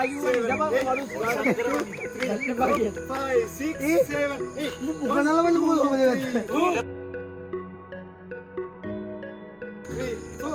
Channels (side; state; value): both; identical; correlation 1.00